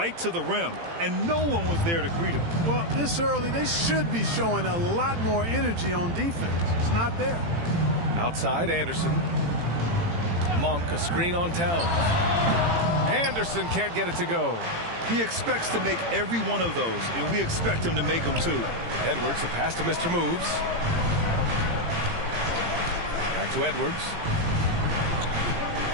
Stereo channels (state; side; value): late; left; 18 ms